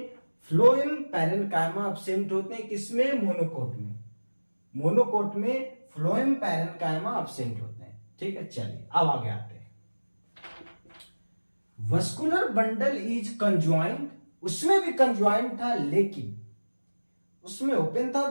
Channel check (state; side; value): inverted; both; correlation -1.00